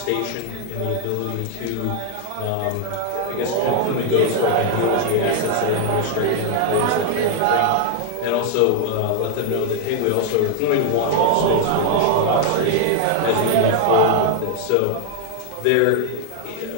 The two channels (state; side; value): different; both; correlation 0.00